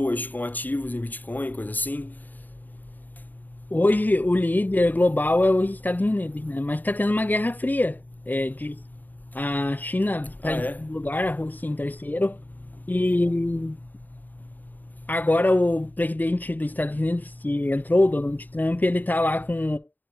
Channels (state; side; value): late; right; 0.086 ms